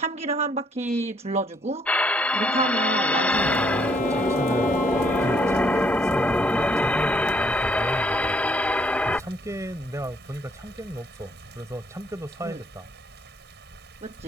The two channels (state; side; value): normal; both; correlation 0.68